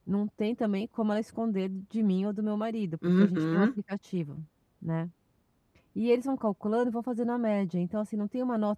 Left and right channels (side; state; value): both; identical; correlation 1.00